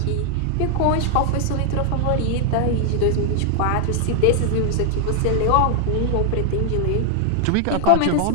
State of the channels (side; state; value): both; different; correlation 0.00